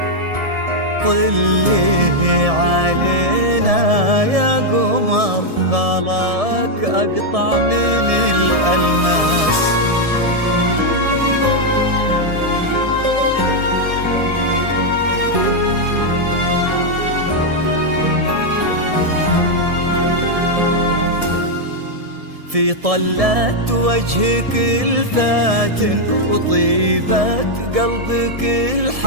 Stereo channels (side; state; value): left; late; 1.7 ms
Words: طلي علينا يا قمر، خلاك أقطع من الألماس. في طلة وجهك الفاتن وطيبة قلبك